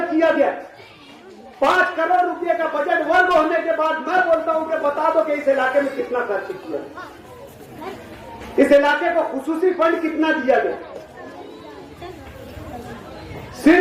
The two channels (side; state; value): both; identical; correlation 1.00